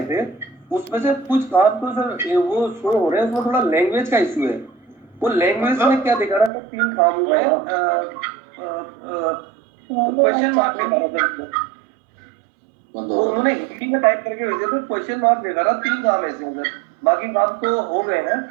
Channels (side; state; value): left; drops out; at 6.5 s